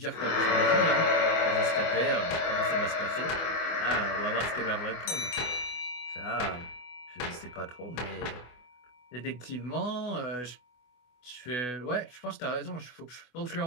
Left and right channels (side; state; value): right; late; 24 ms